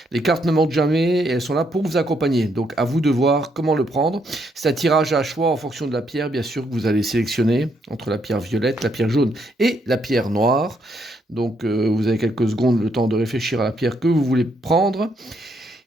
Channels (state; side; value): normal; both; correlation 0.74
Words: Les cartes ne mentent jamais et elles sont là pour vous accompagner. Donc à vous de voir comment le prendre. C'est un tirage à choix en fonction de la pierre, bien sûr, que vous allez sélectionner entre la pierre violette, la pierre jaune et la pierre noire. Donc vous avez quelques secondes le temps de réfléchir à la pierre que vous voulez prendre.